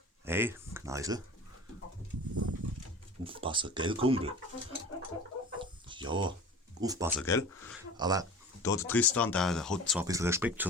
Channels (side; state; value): both; normal; correlation 0.37